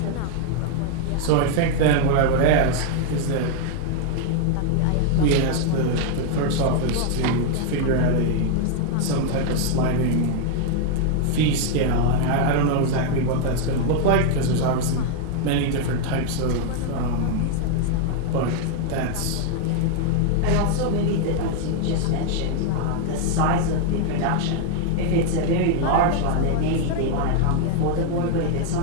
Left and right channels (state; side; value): different; both; correlation 0.00